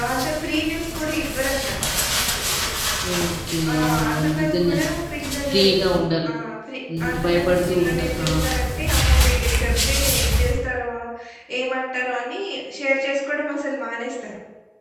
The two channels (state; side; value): identical; both; correlation 1.00